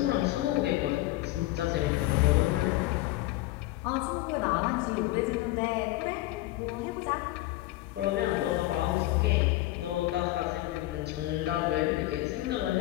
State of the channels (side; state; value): right; quieter; 17.4 dB